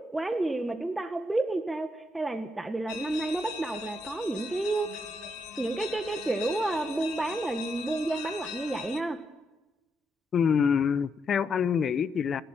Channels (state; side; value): normal; both; correlation 0.80